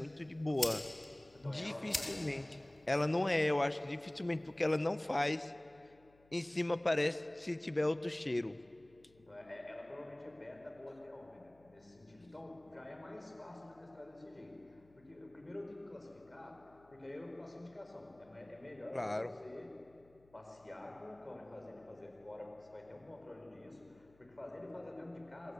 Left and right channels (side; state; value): left; noise; hum, 28 dB below the sound